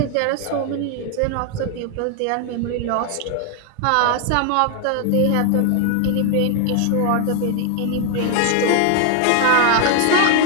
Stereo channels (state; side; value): different; both; correlation 0.00